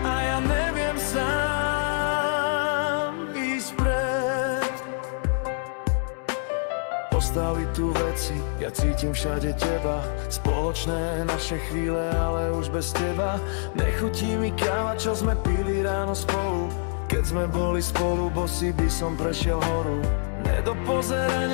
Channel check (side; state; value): right; silent; 61 dB below the other